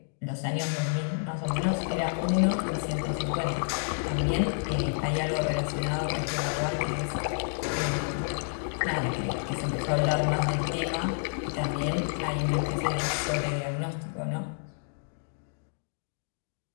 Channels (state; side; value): silent; right; digital silence